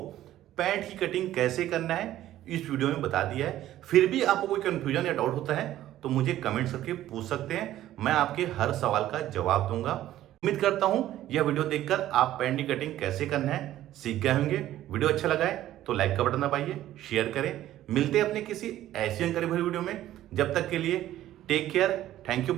पैंट की कटिंग कैसे करना है इस वीडियो में बता दिया है। फिर भी आपको कोई कंफ्यूजन या डाउट होता है तो मुझे कमेंट करके पूछ सकते हैं, मैं आपके हर सवाल का जवाब दूंगा। उम्मीद करता हूं यह वीडियो देखकर आप पैंट की कटिंग कैसे करना है सीख गए होंगे। वीडियो अच्छा लगा है तो लाइक का बटन दबाइए, शेयर करें। मिलते हैं अपने किसी ऐसी जानकारी भरी वीडियो में। जब तक के लिए take care, thank you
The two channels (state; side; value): quieter; left; 13.5 dB